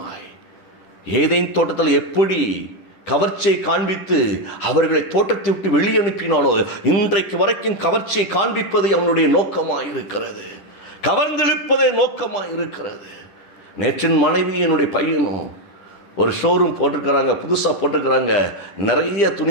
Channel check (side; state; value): right; late; 10 ms